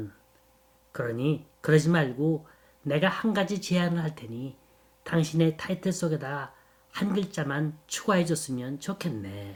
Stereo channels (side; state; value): both; identical; correlation 1.00